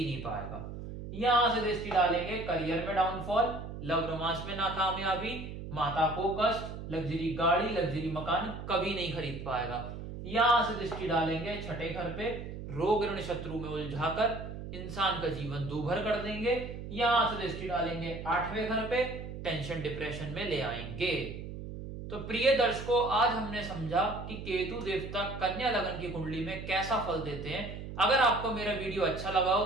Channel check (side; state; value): right; noise; hum, 9 dB below the sound